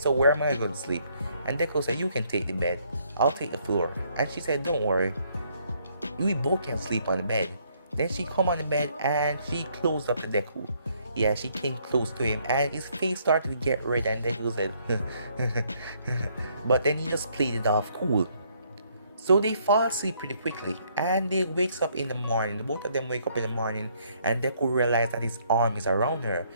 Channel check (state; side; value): inverted; both; correlation -0.68